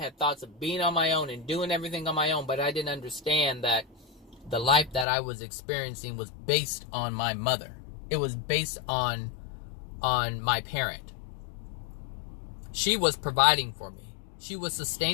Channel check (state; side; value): drops out; right; at 5.1 s